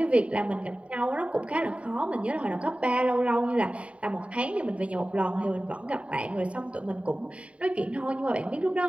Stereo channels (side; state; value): left; late; 0.063 ms